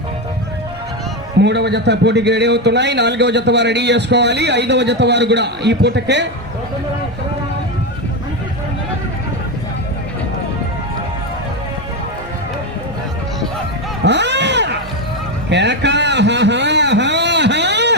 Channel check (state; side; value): normal; both; correlation 0.12